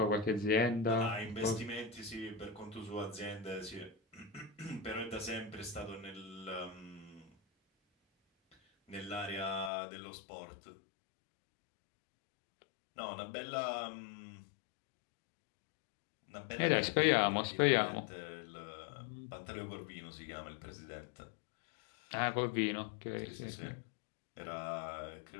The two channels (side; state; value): right; drops out; at 9.7 s